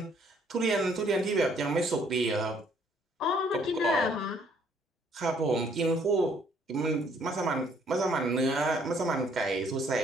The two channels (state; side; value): normal; both; correlation 0.64